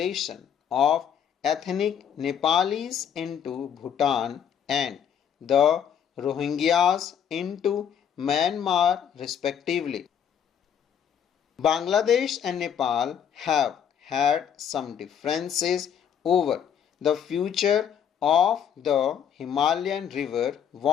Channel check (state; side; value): quieter; right; 8.5 dB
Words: of ethnic Nepalis into Bhutan and the Rohingyas into Myanmar respectively. Bangladesh and Nepal have had some differences over the future of the Himalayan river